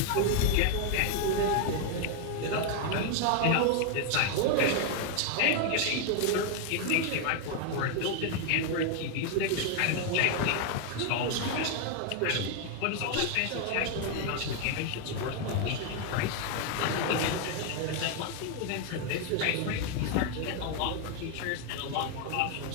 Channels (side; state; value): both; different; correlation 0.01